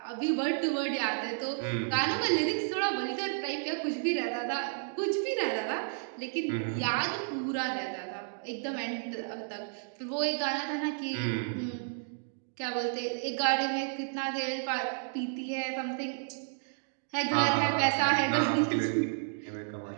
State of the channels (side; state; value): left; silent; digital silence